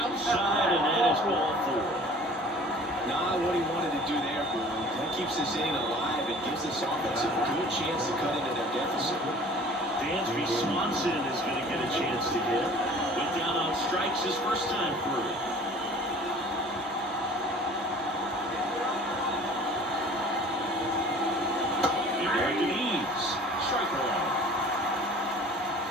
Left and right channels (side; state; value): both; normal; correlation 0.48